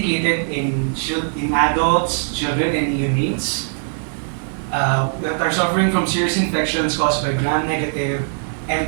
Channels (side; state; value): left; silent; digital silence